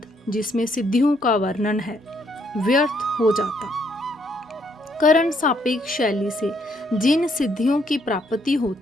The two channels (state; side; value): normal; both; correlation 0.71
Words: जिसमें सिद्धियों का वर्णन है, व्यर्थ हो जाता। करण सापेक्ष शैली से जिन सिद्धियों की प्राप्ति